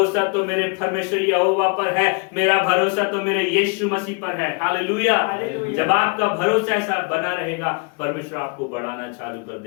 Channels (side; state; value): right; quieter; 33.5 dB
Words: तो मेरे परमेश्वर यहोवा पर है, मेरा भरोसा तो मेरे यीशु मसीह पर है। हालेलुया। जब आपका भरोसा ऐसा बना रहेगा, परमेश्वर आपको बढ़ाना चालू कर